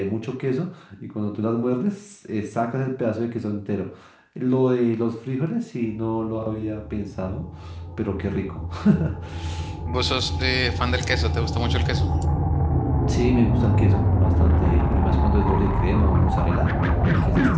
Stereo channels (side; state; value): both; identical; correlation 1.00